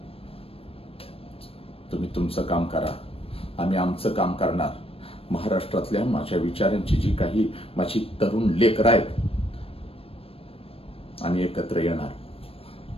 तुम्ही तुमचं काम करा, आम्ही आमचं काम करणार. महाराष्ट्रातल्या माझ्या विचारांची जी काही माझी तरुण लेकरं आहेत, आम्ही एकत्र येणार,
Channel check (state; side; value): late; right; 0.28 ms